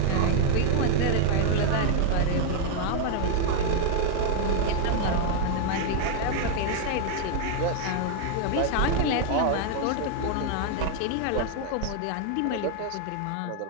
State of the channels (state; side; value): different; both; correlation 0.00